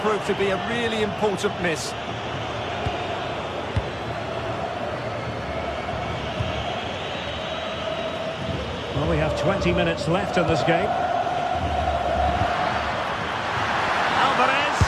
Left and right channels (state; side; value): identical; both; correlation 1.00